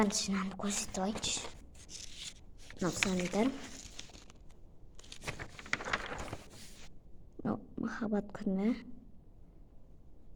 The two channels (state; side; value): identical; both; correlation 1.00